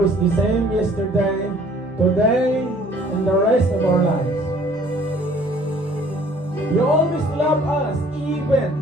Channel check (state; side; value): normal; both; correlation 0.55